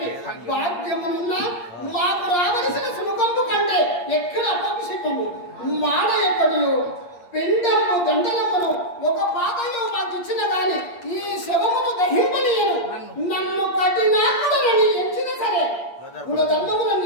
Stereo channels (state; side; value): late; right; 8.6 ms